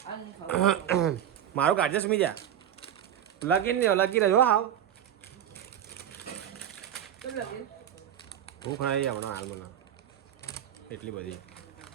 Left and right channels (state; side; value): quieter; left; 10.3 dB